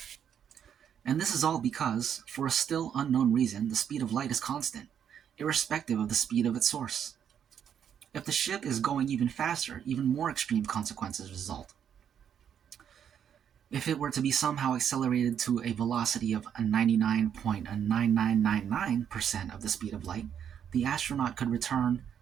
And this is all because, for a still unknown reason, the speed of light is constant, irrespective of the speed of its source. If the ship is going even faster, even more extreme consequences result. If it were to be somehow accelerated to a velocity of 99.9999% of the speed of light, the astronaut could return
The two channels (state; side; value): quieter; left; 8.7 dB